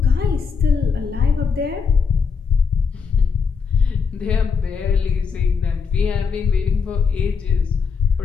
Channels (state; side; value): quieter; right; 5.8 dB